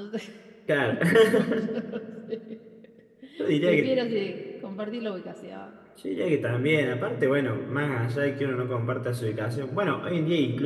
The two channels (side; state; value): both; identical; correlation 1.00